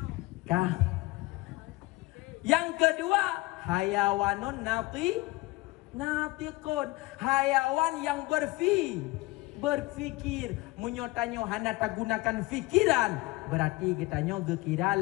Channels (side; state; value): right; quieter; 21.1 dB